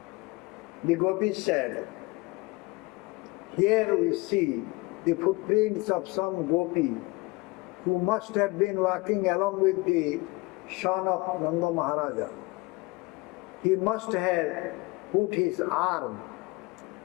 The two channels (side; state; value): right; quieter; 23.7 dB